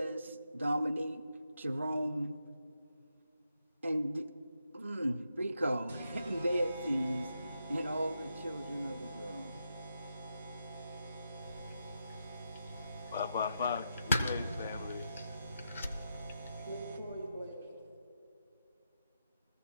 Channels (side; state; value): both; inverted; correlation -0.85